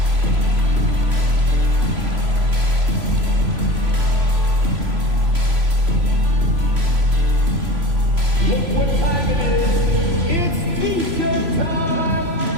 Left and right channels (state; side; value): late; left; 3.0 ms